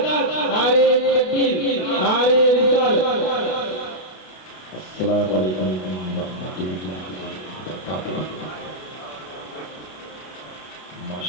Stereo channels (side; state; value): right; late; 32 ms